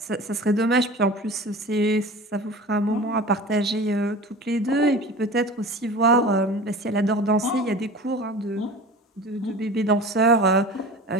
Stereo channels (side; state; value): both; normal; correlation 0.36